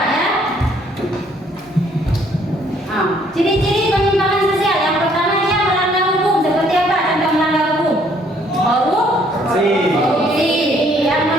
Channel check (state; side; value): normal; both; correlation 0.64